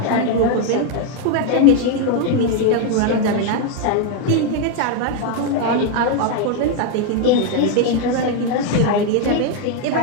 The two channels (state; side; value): different; both; correlation 0.01